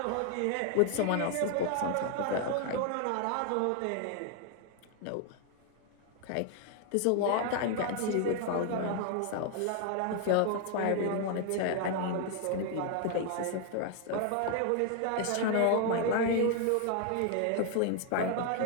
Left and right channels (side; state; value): both; different; correlation 0.00